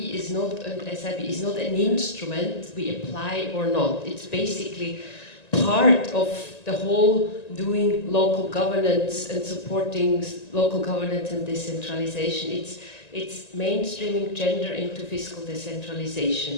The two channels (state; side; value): late; right; 1.9 ms